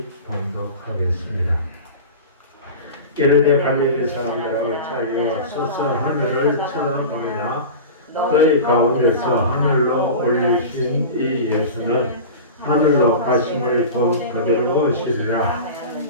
봉독하겠습니다. 게르네 갈릴리 사람들아 어찌하여 서서 하늘을 쳐다보느냐. 너희 가운데서 하늘로 올리신 이 예수는 하늘로 가심을 본 그대로 오시리라.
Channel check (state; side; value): inverted; both; correlation -0.31